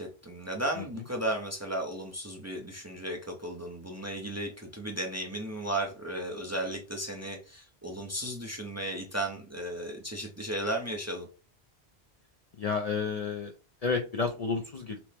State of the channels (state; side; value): normal; both; correlation 0.07